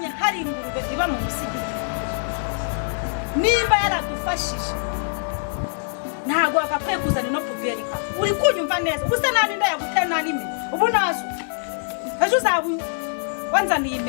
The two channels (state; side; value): silent; right; 62 dB below the other